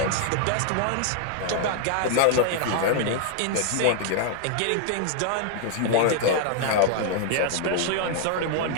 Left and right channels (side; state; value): both; different; correlation 0.00